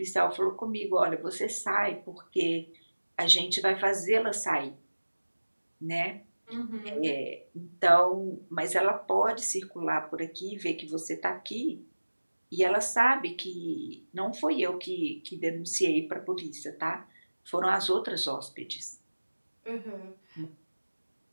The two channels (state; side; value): inverted; both; correlation -1.00